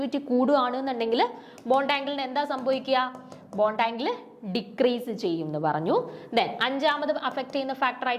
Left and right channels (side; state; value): both; identical; correlation 1.00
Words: കൂടുകയാണ് എന്നുണ്ടെങ്കിൽ ബോണ്ട് ആംഗിളിന് എന്താ സംഭവിക്കുക? ബോണ്ട് ആംഗിൾ ഡിക്രീസ് ചെയ്യും എന്ന് പറഞ്ഞു. ദെൻ അഞ്ചാമത് അഫക്ട് ചെയ്യുന്ന ഫാക്ടർ